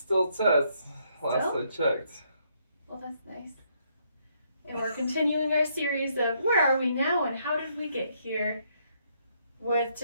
Tess. Last I checked. Well, that's nice. And we're continuing our series of Where Are We Now and How Did We Get Here? With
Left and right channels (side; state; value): both; inverted; correlation -0.72